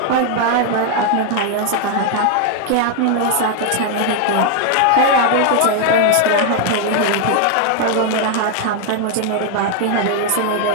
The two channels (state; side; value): different; both; correlation 0.00